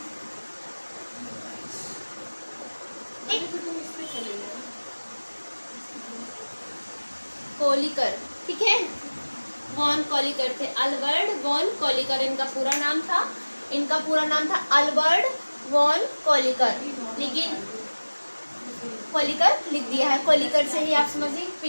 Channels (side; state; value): both; inverted; correlation -1.00